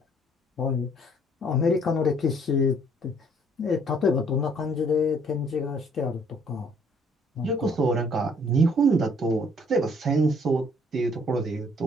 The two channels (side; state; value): both; normal; correlation 0.62